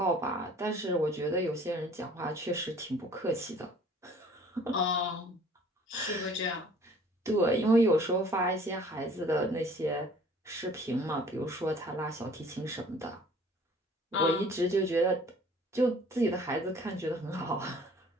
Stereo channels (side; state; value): both; normal; correlation 0.52